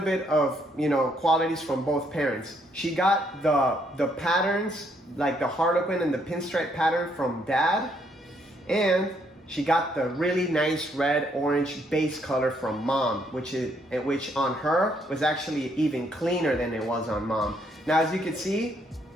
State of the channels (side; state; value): both; normal; correlation 0.71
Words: qualities from both parents. She got the patterns, like the harlequin and the pinstripe pattern from dad, and she got the really nice red orange base color from mom, which on her was actually even cleaner than it was on mom. Now, as you can see,